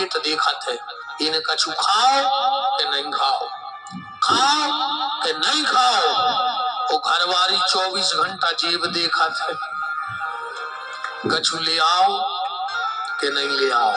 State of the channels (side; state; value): both; identical; correlation 1.00